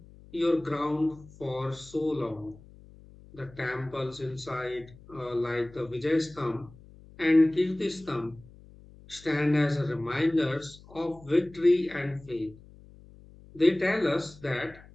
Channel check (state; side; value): noise; left; hum, 22 dB below the sound